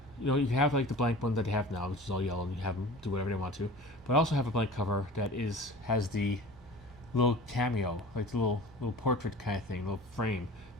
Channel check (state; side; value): normal; both; correlation 0.39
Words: You have like the blank one that they have now, which is all yellow, and you have them do whatever they want to. But I also have a blank cover that has the little cameo, like the little portrait kind of thing, little frame